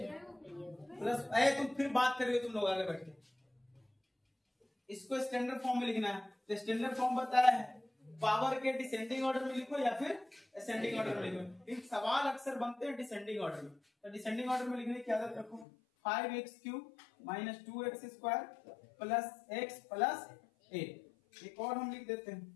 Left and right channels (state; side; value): drops out; right; at 15.7 s